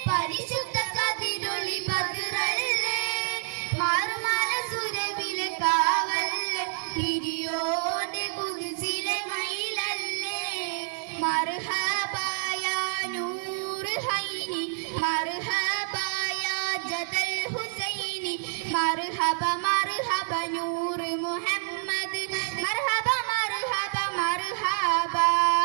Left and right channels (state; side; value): silent; left; digital silence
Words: പരിശുദ്ധ കതിരൊളി ബദ്റല്ലേ മാർമല സുരവിലെ കാവല്ലേ പിരിയോന്റെ കുദ്സിലെ മയിലല്ലേ മർഹബ യാ നൂർ ഹൈനി മർഹബ യാ ജദൽ ഹുസൈനി മർഹബ മർഹബ നൂർ മുഹമ്മദ് മർഹബ മർഹബ മർഹബ